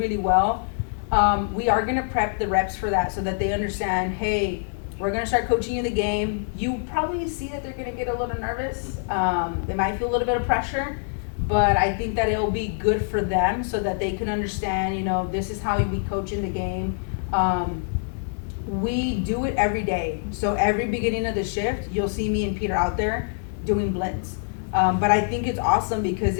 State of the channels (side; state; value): right; silent; digital silence